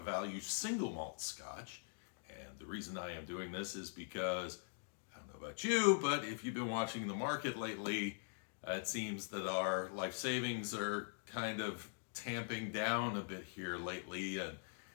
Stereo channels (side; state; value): right; silent; digital silence